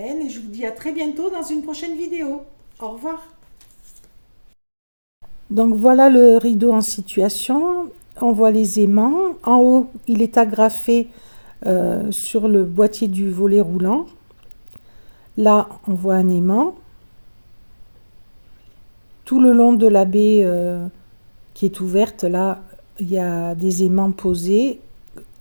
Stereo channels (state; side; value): inverted; both; correlation -1.00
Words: et je vous dis à très bientôt dans une prochaine vidéo. Au revoir. Donc voilà le rideau en situation. On voit les aimants. En haut, il est agrafé sur le boîtier du volet roulant. Là, on voit un aimant. Tout le long de la baie qui est ouverte, là, il y a des aimants posés,